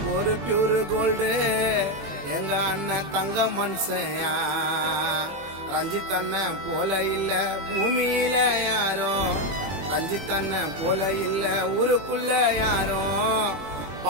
பியூர் கோல்டு எங்க அண்ணன் தங்க மனுஷையா. ரஞ்சித் அண்ணன் போல இல்ல பூமியில யாரும், ரஞ்சித் அண்ணன் போல இல்ல ஊருக்குள்ள யாரும்.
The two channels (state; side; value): late; left; 21 ms